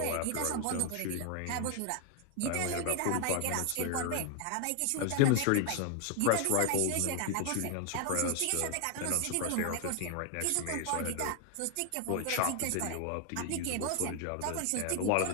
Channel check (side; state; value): both; different; correlation 0.00